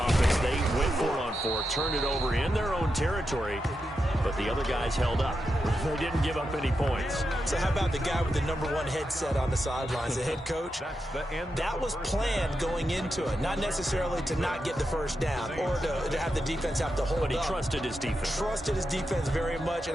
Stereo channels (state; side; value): normal; both; correlation 0.87